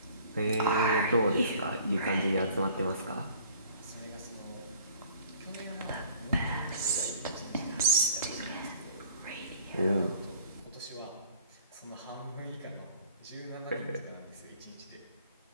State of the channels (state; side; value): inverted; both; correlation -0.53